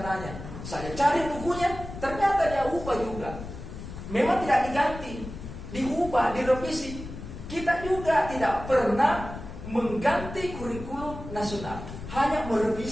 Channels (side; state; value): left; noise; rumble, 11 dB below the sound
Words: Saya cari bukunya, ternyata dia ubah juga. Memang tidak diganti, diubah, direvisi. Kita juga tidak pernah mengganti kurikulum nasional, hanya